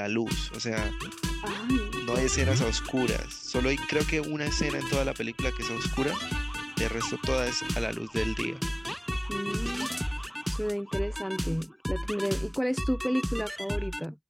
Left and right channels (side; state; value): both; identical; correlation 1.00